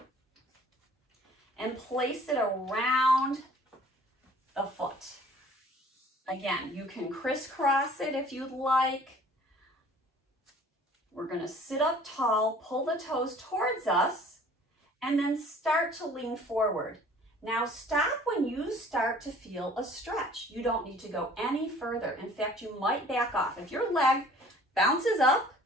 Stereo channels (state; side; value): normal; both; correlation 0.52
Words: and place it around the foot. Again, you can crisscross it if you'd like. We're going to sit up tall, pull the toes towards us, and then start to lean forward. Now stop when you start to feel a stretch. You don't need to go any further. In fact, you might back off. If your leg bounces up,